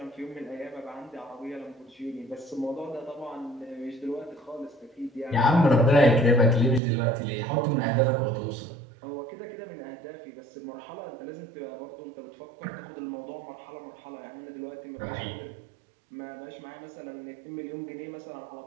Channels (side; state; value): left; drops out; at 6.8 s